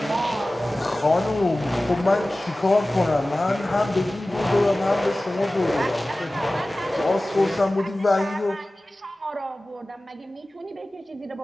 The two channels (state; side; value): normal; both; correlation 0.97